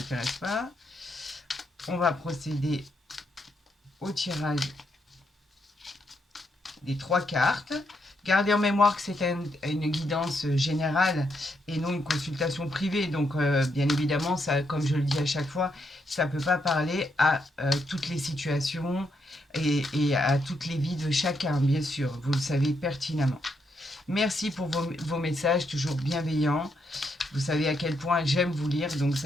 pas. On va procéder au tirage des 3 cartes. Gardez en mémoire que c'est une guidance générale et non une consultation privée. Donc, bien évidemment, ça, comme je le dis à chaque fois, ça ne peut pas parler à toutes les situations et à toutes les vies de chacun, bien sûr. Vous le savez pertinemment. Merci pour vos messages, toujours bienveillants. Vous savez à quel point j'aime vous lire, donc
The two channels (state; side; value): normal; both; correlation 0.78